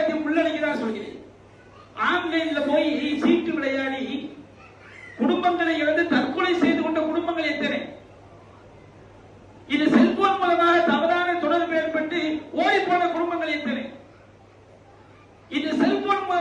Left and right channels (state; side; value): identical; both; correlation 1.00